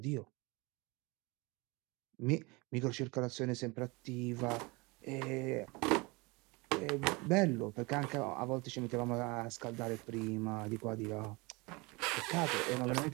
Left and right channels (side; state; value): left; quieter; 26.0 dB